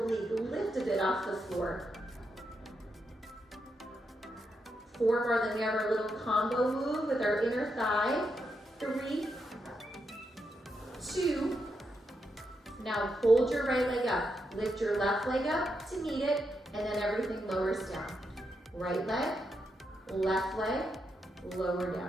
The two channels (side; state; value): both; normal; correlation 0.83